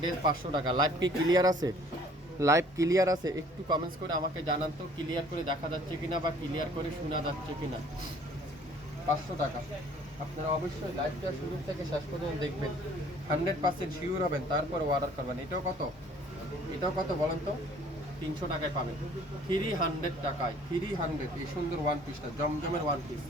ড্রেস 500 টাকা। লাইভ কি ক্লিয়ার আছে? লাইভ ক্লিয়ার আছে? একটু কমেন্টস করে আমাকে জানান তো, ক্লিয়ার করে দেখা যাচ্ছে কিনা বা ক্লিয়ার করে শোনা যাচ্ছে কিনা। 500 টাকা। আপনারা অবশ্যই লাইভটা শুরু থেকে শেষ পর্যন্ত দেখবেন, 100% শিওর হবেন, তারপর অর্ডার করবেন। এটাও কত, এটাও কত বলেন তো? 300 টাকায় পাবেন। 300 টাকায়, 300 এই সুন্দর ওয়ান পিসটা, জমজমের ওয়ান পিস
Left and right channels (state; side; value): normal; both; correlation 0.55